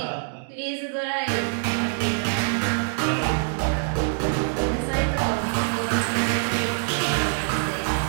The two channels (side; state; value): left; silent; digital silence